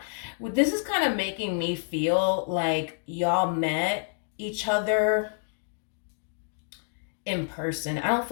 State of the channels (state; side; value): silent; right; digital silence